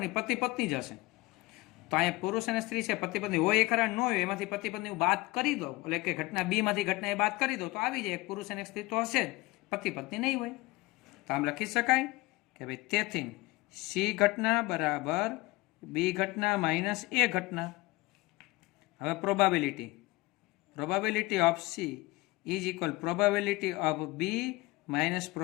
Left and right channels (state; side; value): quieter; right; 21.4 dB